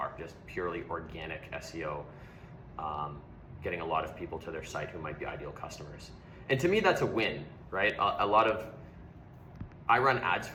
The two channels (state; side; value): identical; both; correlation 1.00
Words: just purely organic SEO, getting a lot of people to their site who might be ideal customers. And to me, that's a win, right? I run ads